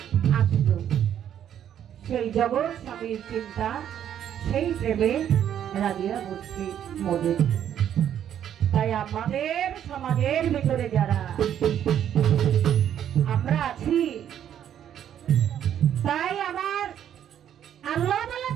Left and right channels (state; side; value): quieter; left; 10.0 dB